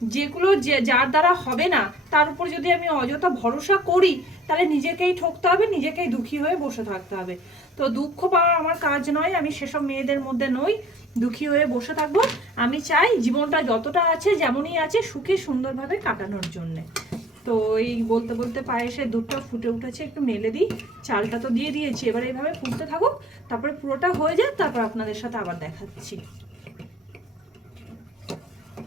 যেগুলো যার দ্বারা হবে না, তার উপর যদি আমি অযথা ভরসা করি, তাহলে নিজেকেই ঠকতে হবে, নিজেকেই দুঃখী হয়ে বসে থাকতে হবে। তো দুঃখ পাওয়া আমার কাজ নয়, আমি সেসব মেয়েদের মধ্যে নই দুঃখী হয়ে বসে থাকবো। আমি চাই জীবনটা যতটা আছে যেমনই আছে সুখে সুন্দরভাবে কাটানোর জন্যে। তো এই বলতে বলতে পায়েসের দুধটা ফুটে উঠেছে, একটু মেলে দিই। চালটা তো দিয়ে দিয়েছি, এবার এইভাবে ফুটতে থাকুক, তারপরে পুরোটা হয়ে যায়, তারপর আপনাদের সাথে আবার দেখাচ্ছি।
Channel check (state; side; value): normal; both; correlation 0.54